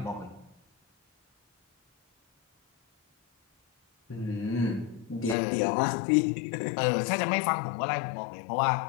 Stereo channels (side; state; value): right; drops out; at 5.4 s